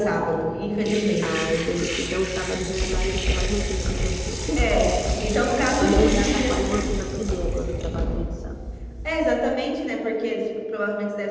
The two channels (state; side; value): identical; both; correlation 1.00